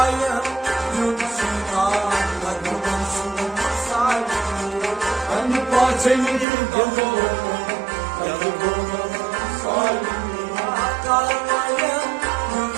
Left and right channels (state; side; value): drops out; left; at 6.5 s